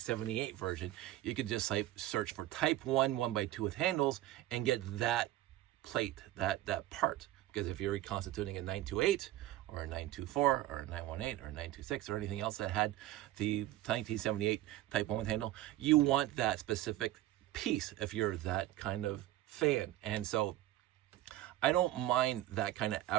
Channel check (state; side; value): quieter; left; 15.0 dB